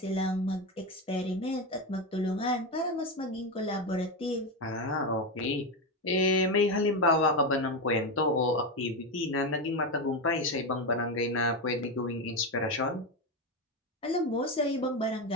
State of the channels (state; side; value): normal; both; correlation 0.13